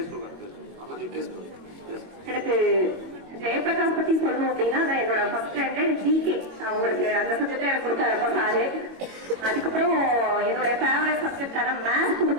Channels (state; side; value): late; left; 21 ms